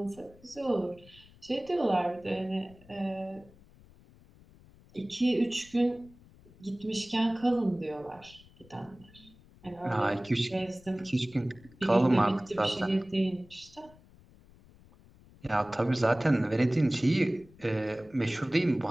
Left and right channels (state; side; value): noise; left; rumble, 25 dB below the sound